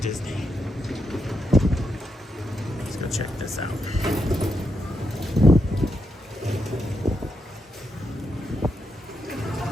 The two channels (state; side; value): normal; both; correlation 0.83